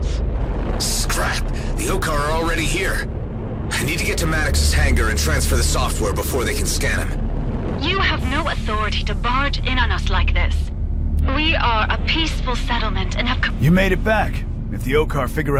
Scrap! The Okar are already here. I need to get to Maddox's hangar and transfer the software before they can scan him. You have no authority to barge in on us like this. We are a peaceful settlement and have... You made it back. If the Okar figure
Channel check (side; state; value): both; identical; correlation 1.00